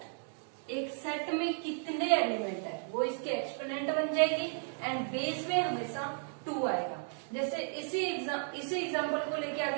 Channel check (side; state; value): left; silent; 55 dB below the other